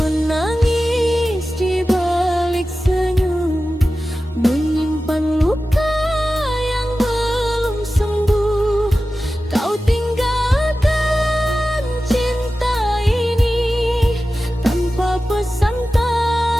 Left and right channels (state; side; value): normal; both; correlation 0.95